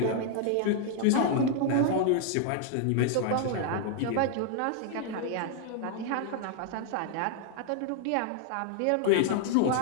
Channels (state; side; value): different; both; correlation 0.00